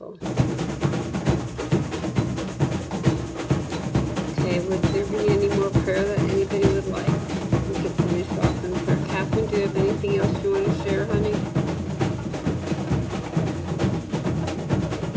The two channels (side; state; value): both; identical; correlation 1.00